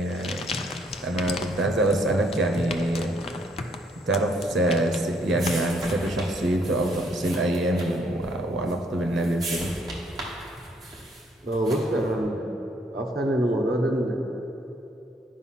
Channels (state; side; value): normal; both; correlation 0.68